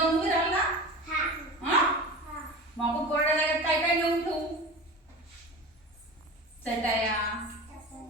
उभी राहाल ना? हा? मग आपण कोरड्या जागेत काय काय नेऊन ठेवू? चटाया,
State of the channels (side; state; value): both; normal; correlation 0.32